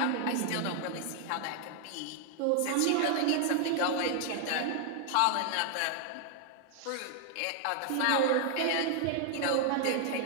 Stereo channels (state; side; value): different; both; correlation 0.00